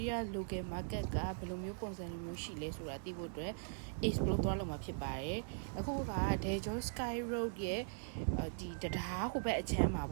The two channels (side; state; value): left; silent; 51 dB below the other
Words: ီးယား local market ကဘယ်လိုမျိုးပုံစံမျိုးရှိလဲဆိုတာသိဖို့အတွက် explore သွားလုပ်မှာဖြစ်ပါတယ်အခုက Daejeon Sky Road ရဲ့ဒီတရားဟိုဘက်အချမ်းမှာ